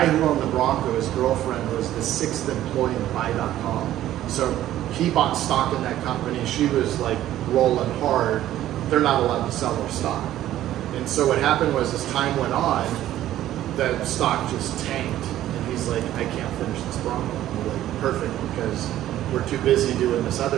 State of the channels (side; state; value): left; quieter; 13.2 dB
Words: who owned the Bronco, his girlfriend, was the 6th employee in Buy.com. So he bought stock in that company. She was like rolling hard. They're not allowed to sell their stock. And so what happened was, as time went on, the stock just tanked. And he's like, I can't finish this Bronco. And we're like, perfect, because we're too busy doing this